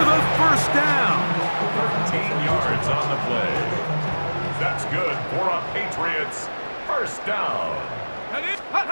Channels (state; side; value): inverted; both; correlation -1.00